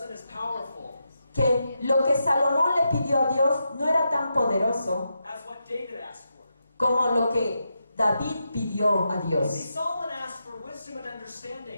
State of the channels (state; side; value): inverted; both; correlation -0.86